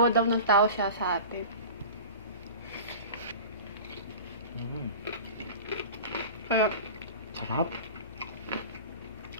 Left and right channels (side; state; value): both; inverted; correlation -0.35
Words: daw ng tao siya sa atin. Kaya, sarap.